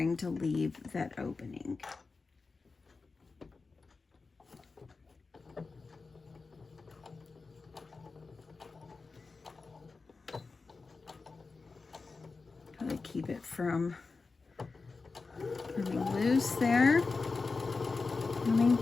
to leave that opening. Gotta keep it from coming almost there. Coming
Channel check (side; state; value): right; quieter; 4.2 dB